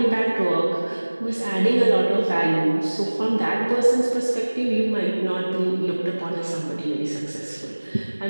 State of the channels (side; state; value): both; inverted; correlation -1.00